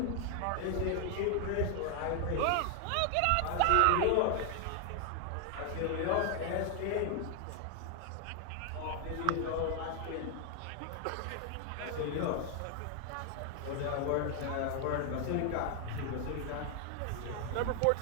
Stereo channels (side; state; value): both; different; correlation 0.00